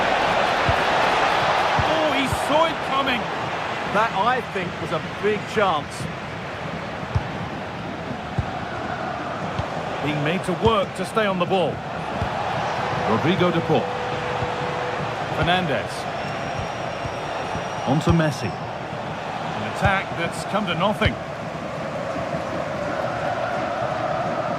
Oh, he saw it coming. That, I think, was a big chance. Being made to work to stay on the ball. Rodrigo de Paul. Fernandez. On to Messi. An attack that's come to nothing.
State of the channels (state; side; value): identical; both; correlation 1.00